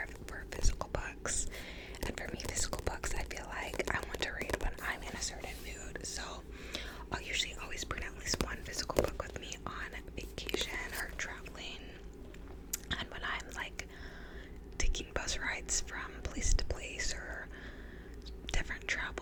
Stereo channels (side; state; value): both; identical; correlation 1.00